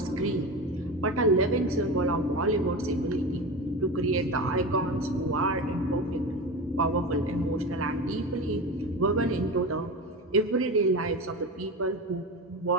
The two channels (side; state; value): both; normal; correlation 0.26